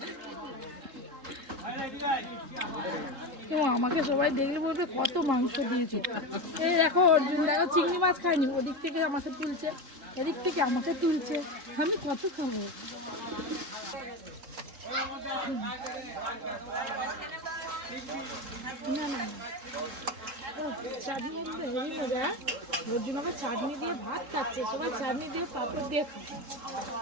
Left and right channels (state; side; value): late; left; 3.7 ms